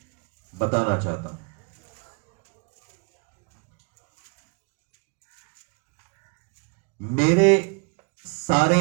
बताना चाहता हूं। मेरे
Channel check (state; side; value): quieter; left; 34.1 dB